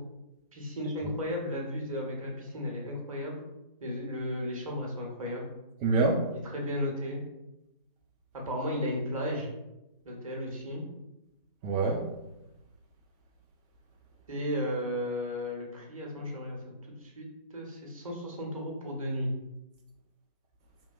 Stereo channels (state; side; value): inverted; both; correlation -0.39